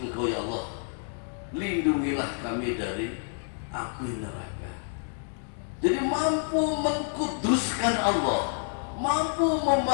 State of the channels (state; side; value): silent; right; 59 dB below the other